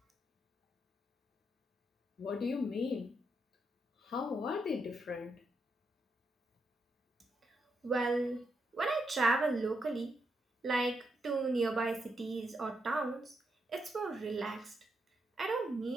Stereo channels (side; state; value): both; normal; correlation 0.81